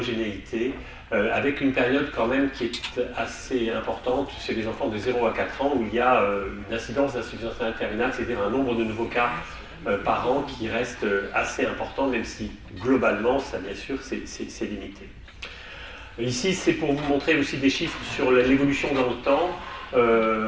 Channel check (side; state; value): both; identical; correlation 1.00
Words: avec une période quand même qui est assez importante chez les enfants de 0 à 4 ans, où il y a une incidence d'insuffisance rénale terminale, c'est-à-dire un nombre de nouveaux cas par an qui reste assez important, même si globalement, ça bien sûr, c'est limité. Ici, c'est pour vous montrer aussi des chiffres sur l'évolution dans le